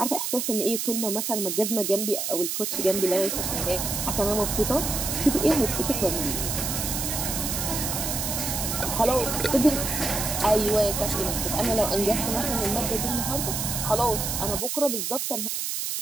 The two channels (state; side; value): noise; right; hiss, 2 dB below the sound